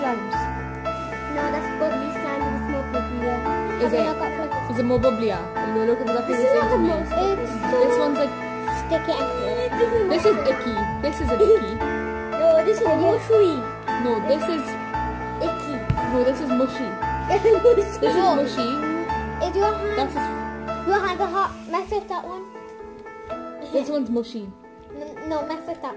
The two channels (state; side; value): identical; both; correlation 1.00